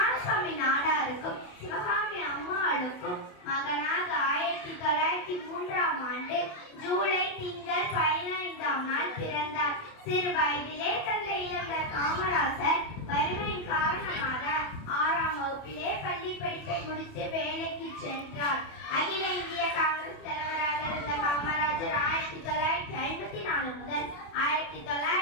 நாடாருக்கும் சிவகாமி அம்மாளுக்கும் மகனாக 1903ஆம் ஆண்டு ஜூலை திங்கள் 15ஆம் நாள் பிறந்தார். சிறு வயதிலே தந்தை இழந்த காமராசர் வறுமையின் காரணமாக 6ஆம் வகுப்பிலே பள்ளி படிப்பை முடித்து வேலைக்கு சென்றார். அகில இந்திய காங்கிரஸ் தலைவராக இருந்த காமராஜர் 1954 முதல்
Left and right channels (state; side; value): late; right; 28 ms